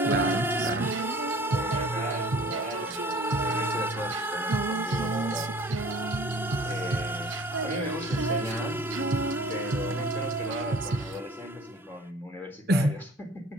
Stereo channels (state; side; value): normal; both; correlation 0.48